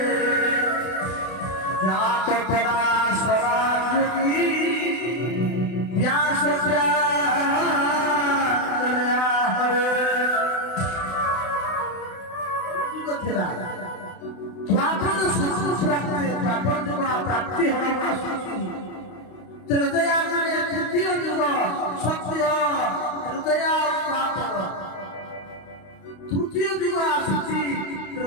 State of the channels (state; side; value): late; right; 32 ms